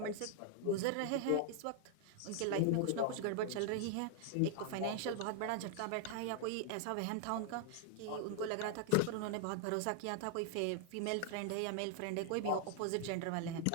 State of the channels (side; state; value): both; different; correlation 0.00